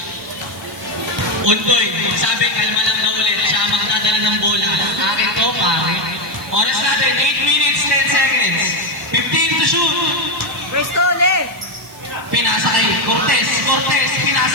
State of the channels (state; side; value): noise; right; hiss, 22 dB below the sound